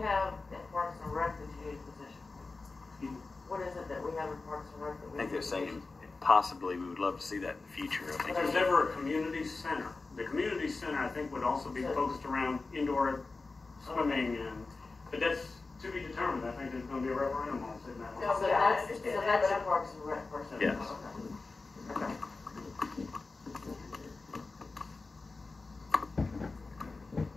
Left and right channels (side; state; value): right; quieter; 3.8 dB